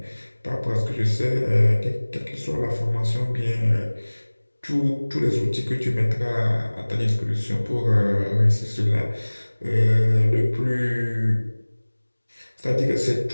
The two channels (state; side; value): inverted; both; correlation -1.00